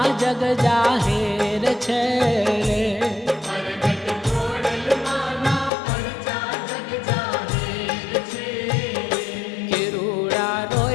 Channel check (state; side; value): drops out; right; at 5.7 s